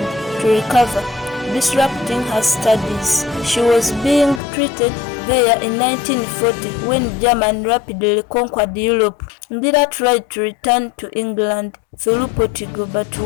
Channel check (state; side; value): drops out; right; at 4.4 s